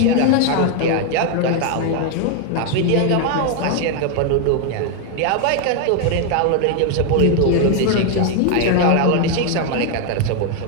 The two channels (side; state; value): both; different; correlation 0.01